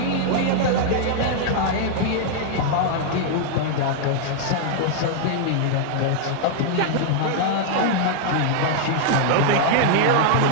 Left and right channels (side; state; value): both; different; correlation -0.01